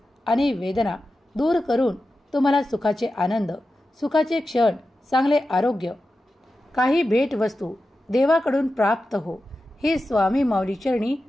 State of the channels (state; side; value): normal; both; correlation 0.92